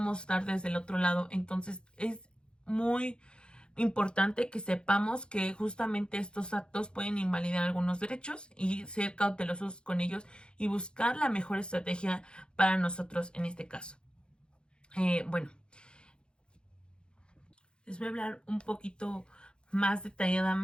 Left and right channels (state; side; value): late; right; 0.051 ms